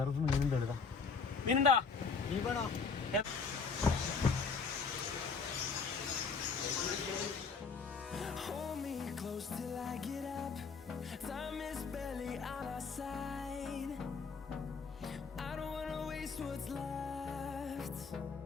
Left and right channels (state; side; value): quieter; right; 5.1 dB